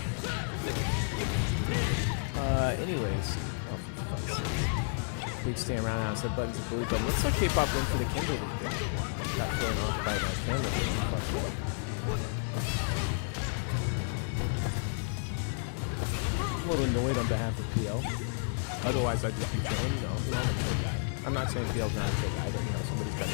Anyways. Oh, for fuck's sake. Big stand around now. Set buttons and bully button. Looks like K-Pop went for the Kimberly there. Got thrown off by my camera. I'm a little annoyed on behalf of PL. Otherwise, I'd just be chilling. I'm a chill guy. I'm not saying PL's not a chill guy, but somebody's got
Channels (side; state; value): right; silent; 57 dB below the other